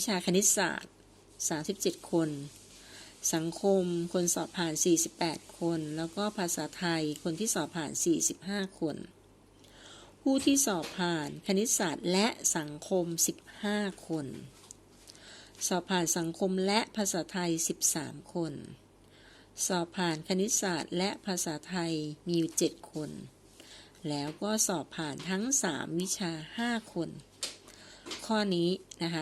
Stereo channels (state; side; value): identical; both; correlation 1.00